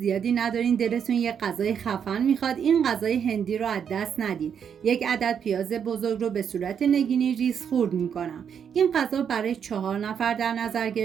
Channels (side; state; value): left; quieter; 7.7 dB